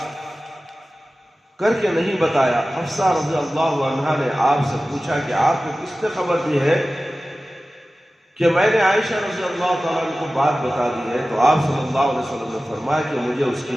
کر کے نہیں بتایا۔ حفصہ رضی اللہ عنہ نے آپ سے پوچھا کہ آپ کو کس نے خبر دی ہے کہ میں نے عائشہ رضی اللہ تعالیٰ عنہ کو بات بتا دی ہے؟ تو آپ صلی اللہ علیہ وسلم نے فرمایا کہ مجھے اس کی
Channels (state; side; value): normal; both; correlation 0.96